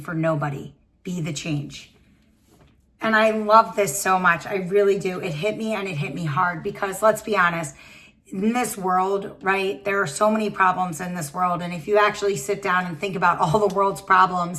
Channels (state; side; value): identical; both; correlation 1.00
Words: nobody. Be the change. And I love this so much. I really do. It hit me, and it hit me hard, because let's be honest, in this world, right, there are so many problems in this world. And if you actually sit down and think about all the world's